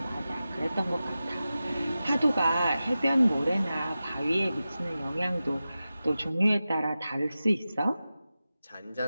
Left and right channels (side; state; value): both; inverted; correlation -0.94